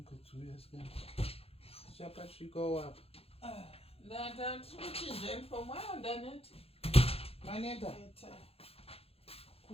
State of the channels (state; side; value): late; right; 0.29 ms